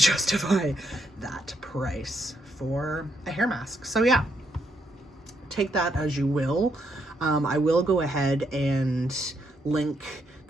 that price for a hair mask. So yeah, take that as you will. I will go ahead and link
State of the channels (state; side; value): normal; both; correlation 0.76